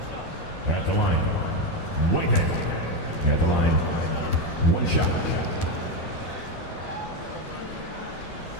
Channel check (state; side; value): late; right; 12 ms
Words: At the line, Whitehead. At the line, 1 shot.